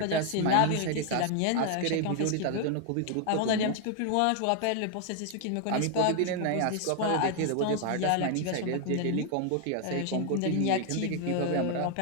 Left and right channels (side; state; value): both; different; correlation 0.00